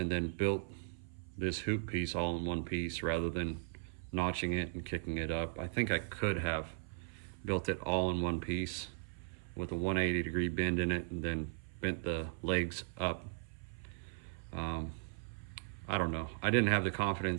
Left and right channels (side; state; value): left; silent; 53 dB below the other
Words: then built this hoop piece all in one piece rather than notching it and kicking it up. I think I could have built it all in one piece with a 180-degree bend in it and then bent the legs up. I don't know. I didn't have the